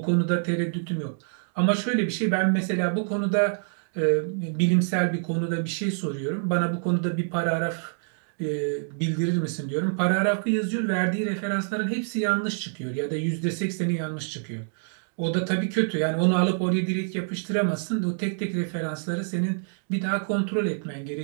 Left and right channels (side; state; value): left; silent; digital silence